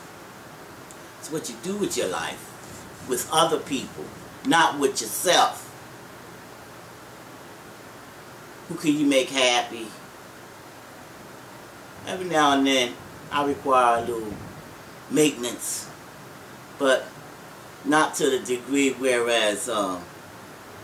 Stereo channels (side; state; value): both; identical; correlation 1.00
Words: It's what you do with your life, with other people, not with yourself. Who can you make happy? Every now and then, I require a little maintenance, but not to the degree whereas you